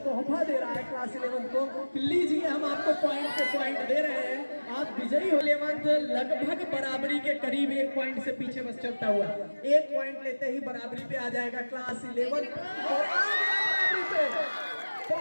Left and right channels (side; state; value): both; inverted; correlation -1.00